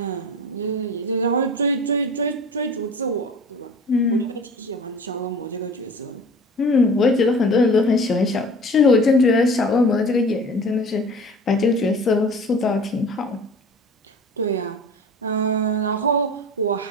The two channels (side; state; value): both; normal; correlation 0.41